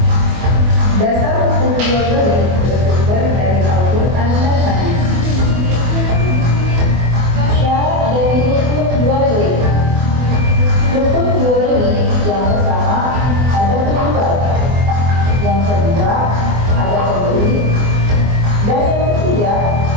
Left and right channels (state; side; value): late; left; 24 ms